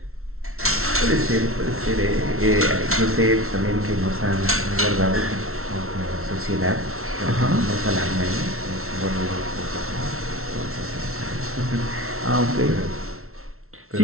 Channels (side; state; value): left; late; 0.62 ms